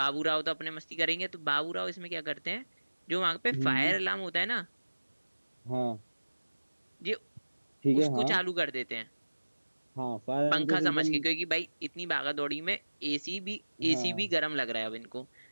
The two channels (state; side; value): inverted; both; correlation -1.00